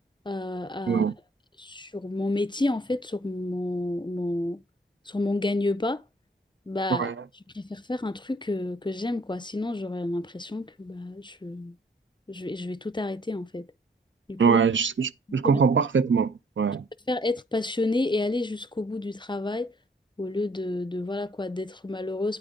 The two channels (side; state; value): both; normal; correlation 0.60